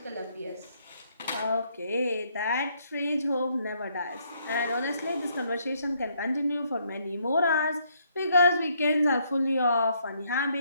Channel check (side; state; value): both; inverted; correlation -0.70